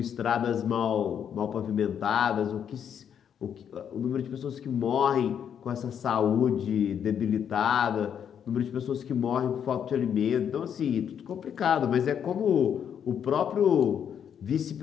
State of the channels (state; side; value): quieter; right; 8.5 dB